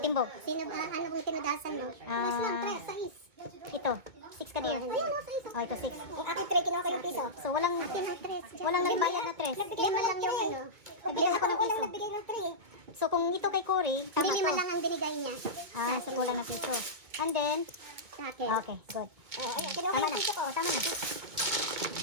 Sino ba? Ano kung tinudasan mo? Ah. Mas lang, tres, sais. Ito. 6 ka dear. Ayun, no, sais. Oh, ito 6. Yung akin, tre, kinuha ko yung piso. So, walang Akin ang tres. walang nagbayad na 3. Nagbigay mo lang yung ano. Nagbigay ako ng piso. Nagbigay ng tre. So, kung ito kay Cory, Hindi tama lima to. lang ang binigay niya. Ah, so kulang na piso. And then, Sa akin. okay, good. Oh, ayun, kinuha ko Tama yung na. piso ko. Tama na.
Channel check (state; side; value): late; left; 2.2 ms